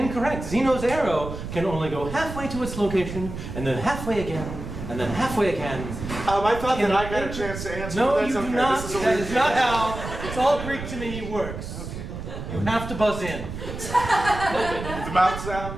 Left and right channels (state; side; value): noise; right; rumble, 8 dB below the sound